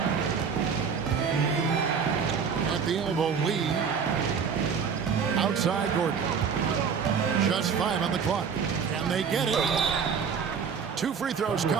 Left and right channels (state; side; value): quieter; left; 6.4 dB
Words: At the elbow, Lee. Outside Gordon. Just 5 on the clock. And they get it. 2 free throws